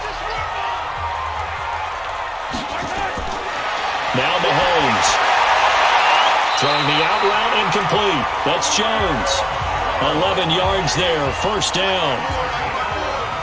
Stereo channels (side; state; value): both; identical; correlation 1.00